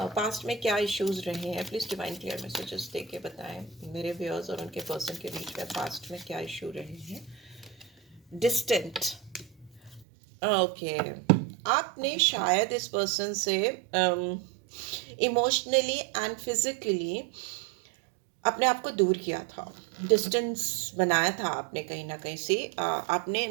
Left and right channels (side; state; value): left; drops out; at 10.1 s